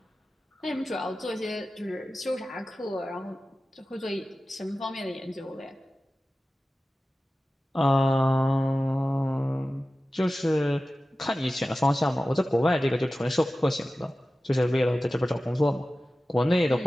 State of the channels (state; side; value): normal; both; correlation 0.95